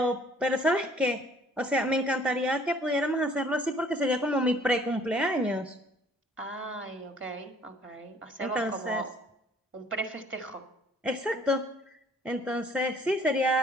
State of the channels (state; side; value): normal; both; correlation 0.58